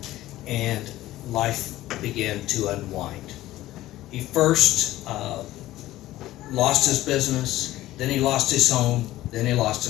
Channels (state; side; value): quieter; right; 15.6 dB